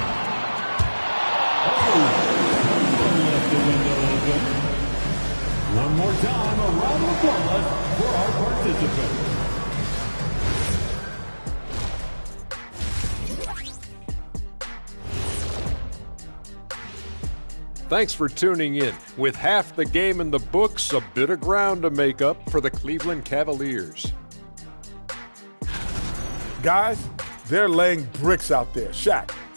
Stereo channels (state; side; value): inverted; both; correlation -1.00